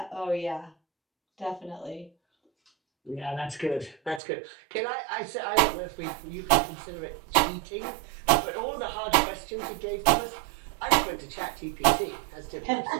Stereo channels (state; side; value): drops out; left; at 4.2 s